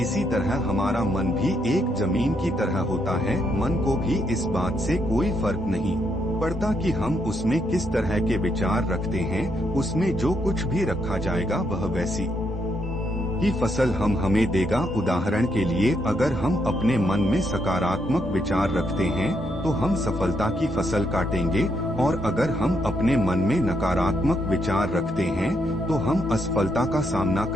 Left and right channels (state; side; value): normal; both; correlation 0.77